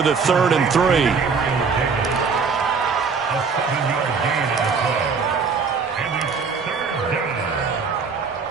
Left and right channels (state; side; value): quieter; left; 5.3 dB